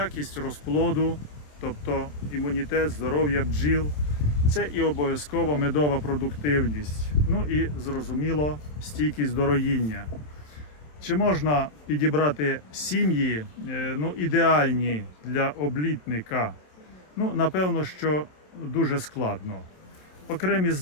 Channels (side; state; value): right; late; 27 ms